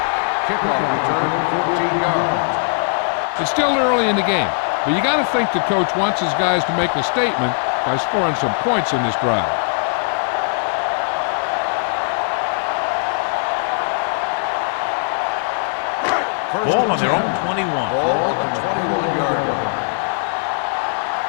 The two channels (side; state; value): right; silent; 62 dB below the other